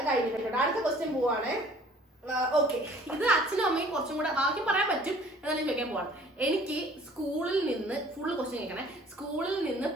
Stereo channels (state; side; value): normal; both; correlation 0.53